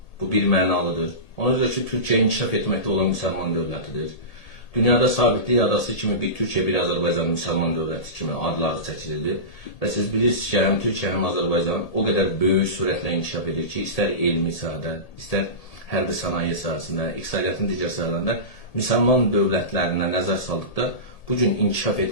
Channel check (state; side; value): late; right; 1.8 ms